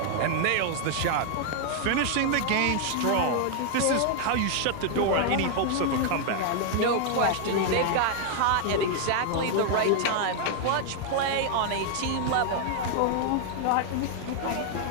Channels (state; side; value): different; both; correlation 0.00